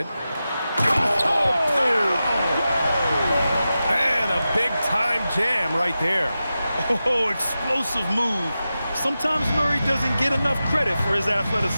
Oh! And a big-time jam right there. Oh, explosive move. Sometimes Murray doesn't get enough credit for his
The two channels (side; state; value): both; inverted; correlation -0.92